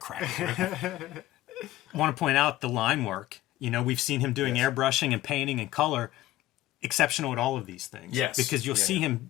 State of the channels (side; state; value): right; quieter; 15.7 dB